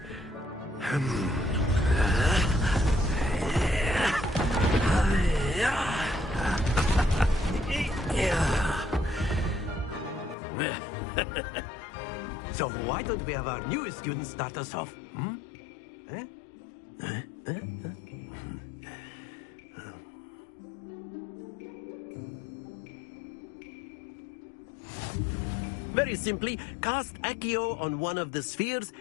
So why don't we have our newest student start us off? Very simply, cast Accio on one of the spheres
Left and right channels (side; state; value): right; drops out; at 10.4 s